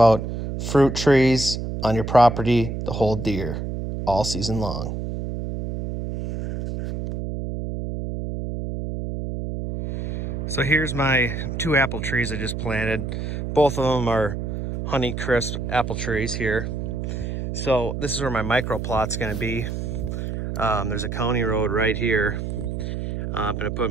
fruit trees on your property to hold deer all season long. So here's my 2 apple trees I just planted. Both of them are Honeycrisp apple trees here. So this is where my micro plot's going to be. There's a county road right here. I'm going to put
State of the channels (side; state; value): right; noise; hum, 4 dB below the sound